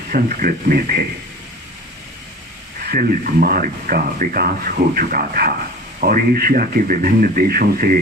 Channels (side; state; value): both; normal; correlation 0.39